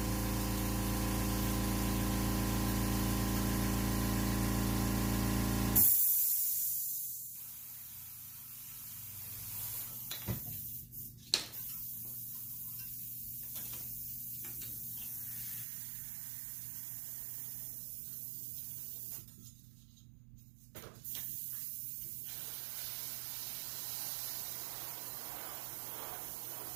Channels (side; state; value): left; drops out; at 15.7 s